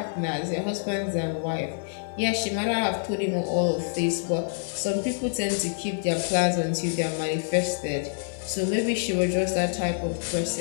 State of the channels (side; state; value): right; silent; digital silence